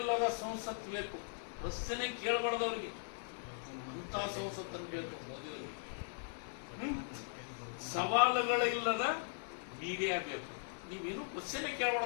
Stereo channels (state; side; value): silent; right; 52 dB below the other